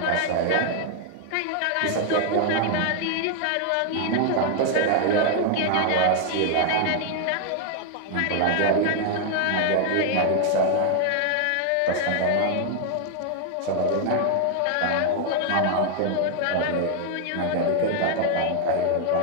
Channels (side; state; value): both; different; correlation 0.00